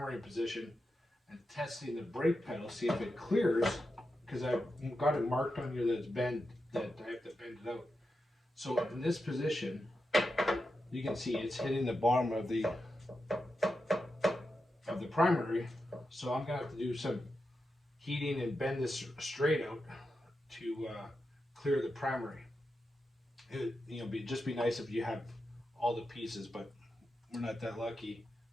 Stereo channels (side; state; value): both; normal; correlation 0.88